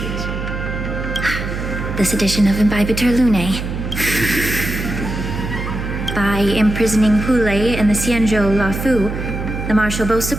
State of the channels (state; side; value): noise; right; hum, 5 dB below the sound